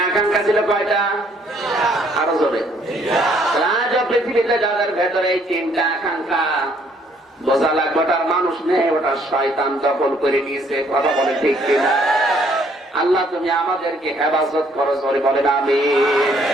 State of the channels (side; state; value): both; normal; correlation 0.64